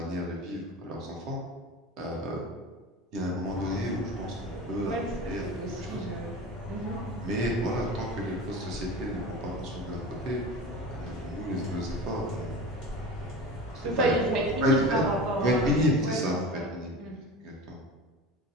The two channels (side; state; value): both; normal; correlation 0.33